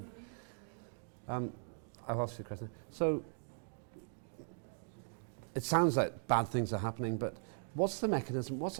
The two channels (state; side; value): silent; left; digital silence